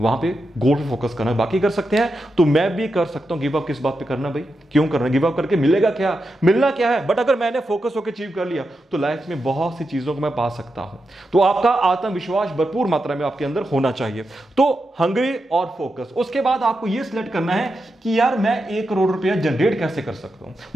पे गोल पे फोकस करना। बाकी कर सकते हैं तो मैं भी कर सकता हूं। गिव अप किस बात पे करना भाई, क्यों करना? गिव अप करके मिलेगा क्या, मिलना क्या है? बट अगर मैंने फोकस होकर अचीव कर लिया तो लाइफ में बहुत सी चीजों को मैं पा सकता हूं। तो आपका आत्मविश्वास भरपूर मात्रा में आपके अंदर होना चाहिए। तो हंग्री और फोकस। उसके बाद आपको यह सिलेक्ट करना है कि यार मैं 1 करोड़ रुपया जनरेट कैसे कर सकता हूं,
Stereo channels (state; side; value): normal; both; correlation 0.87